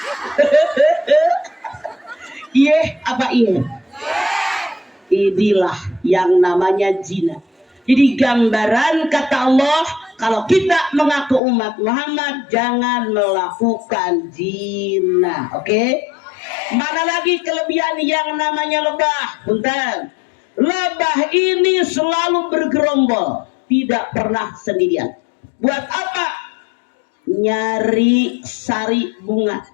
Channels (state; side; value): drops out; right; at 11.4 s